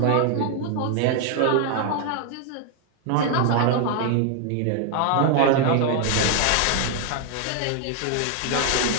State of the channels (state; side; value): different; both; correlation 0.00